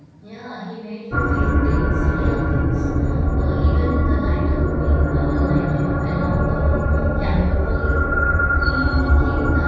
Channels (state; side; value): identical; both; correlation 1.00